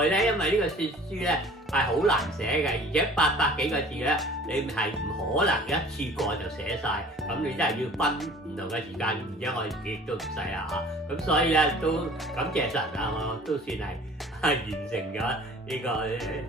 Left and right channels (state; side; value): normal; both; correlation 0.48